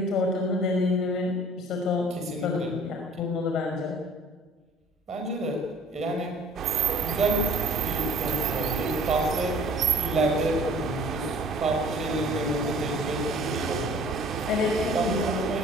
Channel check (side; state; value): both; normal; correlation 0.50